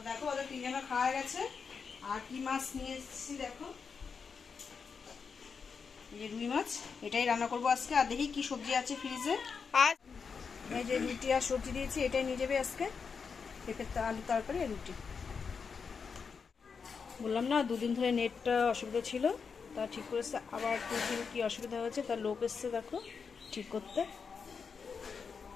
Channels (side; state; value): right; quieter; 5.7 dB